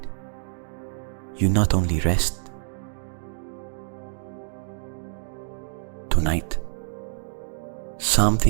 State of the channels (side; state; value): left; silent; 61 dB below the other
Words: you not only rest. Tonight,